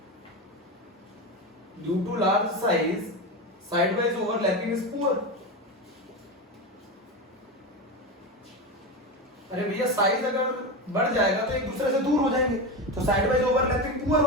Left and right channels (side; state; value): both; normal; correlation 0.19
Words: due to large size side wise overlapping is poor. अरे भैया साइज अगर बढ़ जाएगा तो एक दूसरे से दूर हो जाएंगे, तो साइड वाइज ओवरलैपिंग पुअर